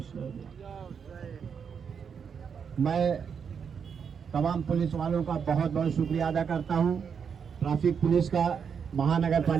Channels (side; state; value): left; quieter; 6.8 dB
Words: میں تمام پولیس والوں کا بہت بہت شکریہ ادا کرتا ہوں۔ ٹریفک پولیس کا، مہانگر